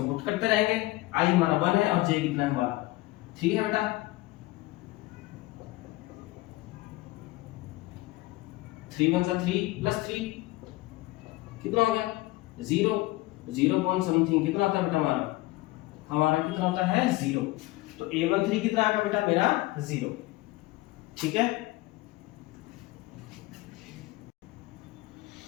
पुट करते रहेंगे। i हमारा 1 है और j कितना है हमारा 3 है बेटा। 3 1 3 +3 कितना हो गया 0, 0 पॉइंट समथिंग कितना होता है बेटा हमारा कितना होता है 0। तो A13 कितना आएगा बेटा मेरा 0। ठीक है,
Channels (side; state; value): right; quieter; 19.7 dB